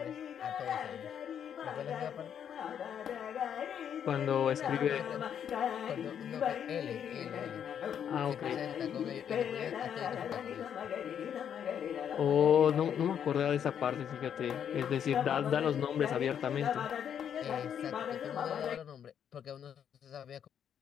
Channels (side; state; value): right; quieter; 8.7 dB